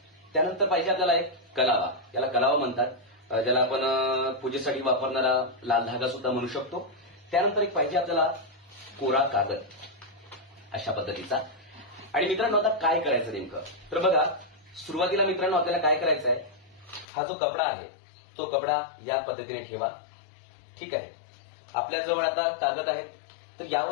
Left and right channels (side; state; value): right; drops out; at 17.1 s